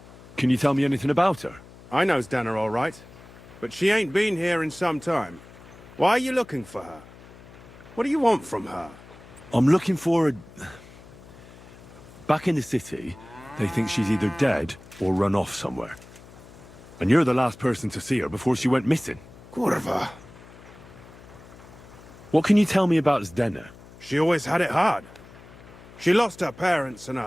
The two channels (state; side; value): noise; left; hum, 20 dB below the sound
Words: Can you tell me anything about her? I know Zdenna all right, but she ain't been here in some time. Why are you looking for her? What do you want from her? I'm looking for a... Back in the city, they think she's either dead or run off somewhere. And you're the last person to see her before she went missing. Kurva. What can you tell me about Zdenna? She always had it hard. She lost her parents and her